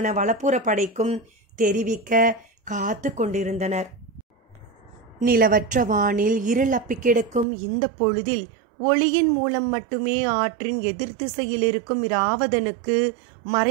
வலப்புற படைக்கும் தெரிவிக்க காத்து கொண்டிருந்தனர். நிலவற்ற வானில் இருள் அப்பி கிடக்கும் இந்த பொழுதில் ஒளியின் மூலம் மட்டுமே ஆற்றின் எதிர் திசையில் இருக்கும் இராவதனுக்கு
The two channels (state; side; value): drops out; left; at 7.5 s